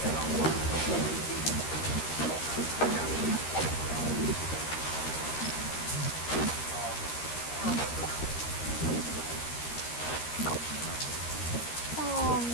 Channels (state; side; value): late; right; 13 ms